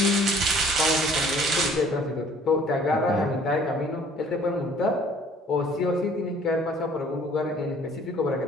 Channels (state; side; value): normal; both; correlation 0.55